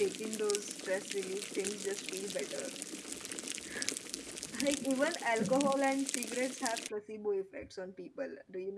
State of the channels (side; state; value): both; identical; correlation 1.00